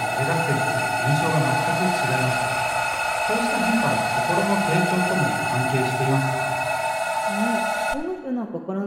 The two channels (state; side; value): identical; both; correlation 1.00